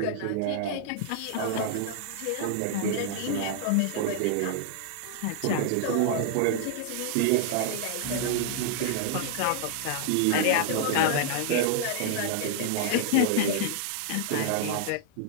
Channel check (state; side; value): different; both; correlation 0.00